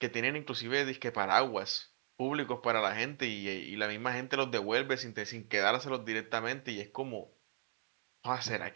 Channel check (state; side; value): silent; left; digital silence